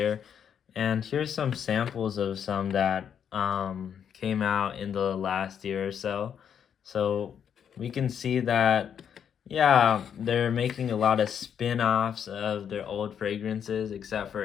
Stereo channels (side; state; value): right; quieter; 8.2 dB